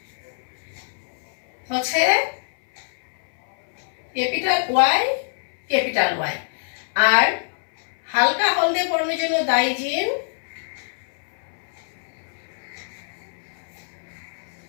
হচ্ছে ক্যাপিটাল ওয়াই ক্যাপিটাল ওয়াই, আর হালকা হলদে বর্ণের জন্য দায়ী জিন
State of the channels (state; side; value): silent; right; 62 dB below the other